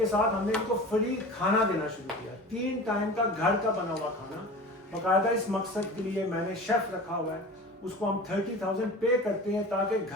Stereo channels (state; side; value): normal; both; correlation 0.36